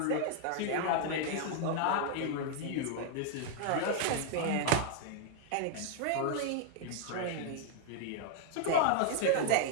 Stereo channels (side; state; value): both; different; correlation -0.01